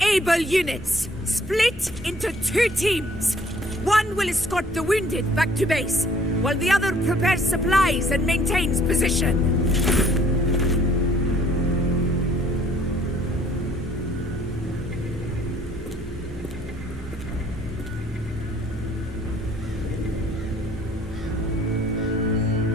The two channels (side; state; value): both; normal; correlation 0.58